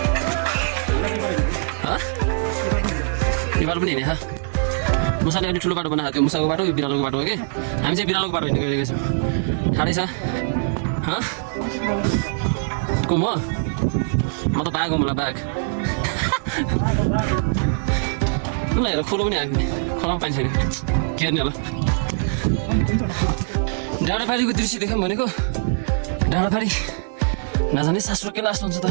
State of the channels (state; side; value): silent; left; digital silence